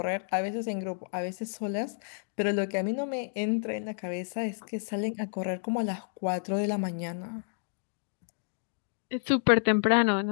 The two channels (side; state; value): right; silent; 57 dB below the other